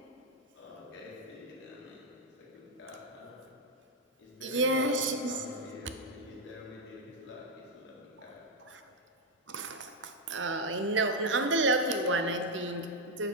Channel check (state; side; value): normal; both; correlation 0.01